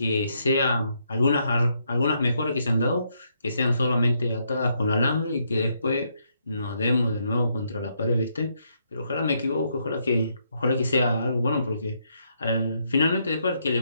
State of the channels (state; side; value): inverted; both; correlation -0.76